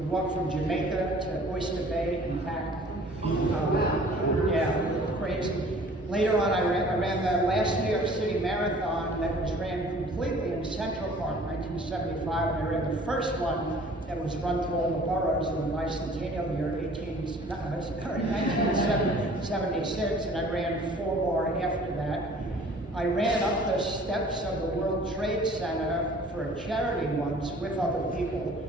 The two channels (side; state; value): both; normal; correlation 0.51